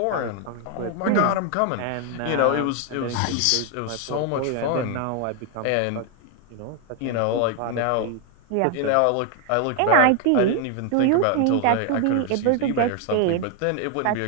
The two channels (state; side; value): different; both; correlation 0.01